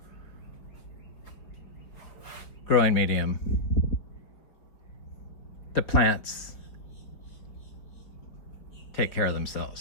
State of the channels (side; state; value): right; late; 4.6 ms